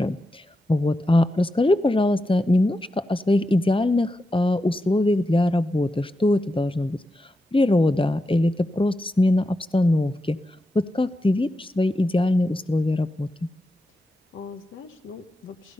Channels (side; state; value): both; normal; correlation 0.89